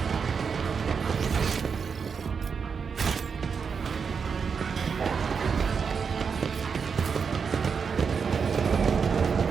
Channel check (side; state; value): left; quieter; 6.0 dB